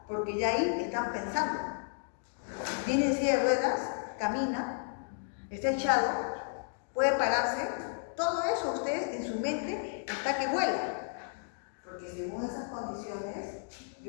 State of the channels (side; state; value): right; silent; digital silence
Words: porque ya ahí están pensando. Viene en silla de ruedas, camina, está echado, puede pararse. Todo eso usted en su mente está que vuela. Porque según esas condiciones,